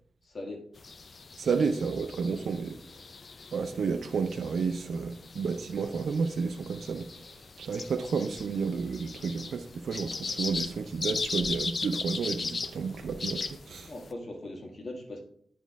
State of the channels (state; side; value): quieter; left; 3.1 dB